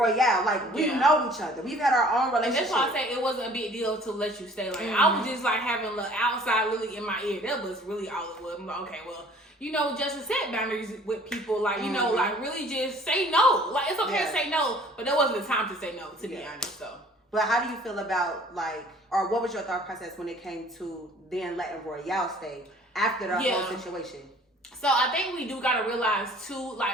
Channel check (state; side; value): normal; both; correlation 0.53